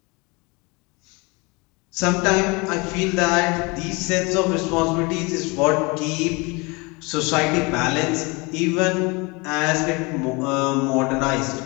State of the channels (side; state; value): right; quieter; 27.4 dB